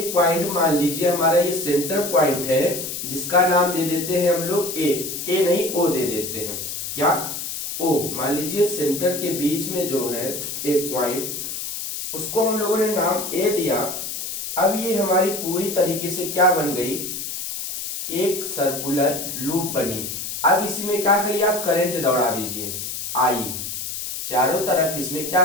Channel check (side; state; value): left; noise; hiss, 6 dB below the sound